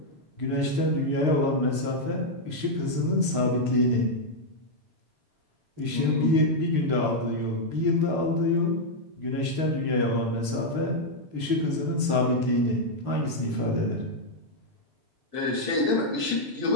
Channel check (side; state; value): left; late; 6.6 ms